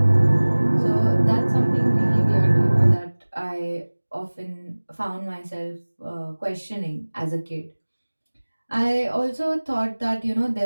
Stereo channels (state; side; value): inverted; both; correlation -1.00